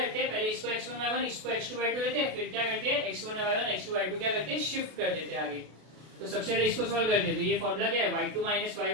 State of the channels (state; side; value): late; left; 32 ms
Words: हैं? पहले इसको x1, y1, इसको x2, y2 लेते हैं, फिर क्या करते हैं? x1, y1, x2, y2 क्या करते हैं? शिफ्ट कर देते हैं आगे। तो सबसे पहले इसको सॉल्व करते हैं। तो ये फॉर्मूला क्या है, y2 minus